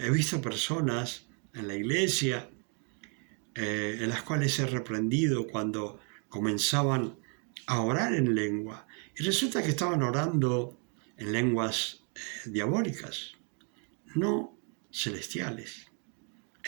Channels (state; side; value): quieter; left; 38.9 dB